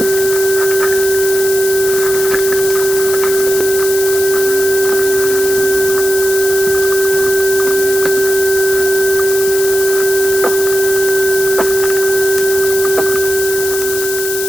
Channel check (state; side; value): noise; left; hiss, 5 dB below the sound